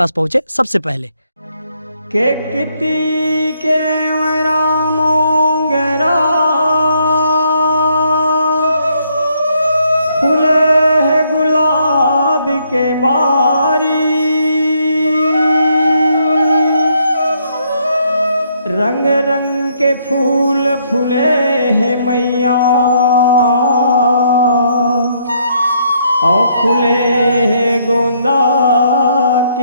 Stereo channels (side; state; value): both; inverted; correlation -0.71